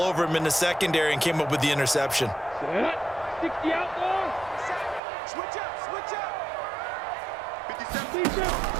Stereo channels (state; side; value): drops out; left; at 5.0 s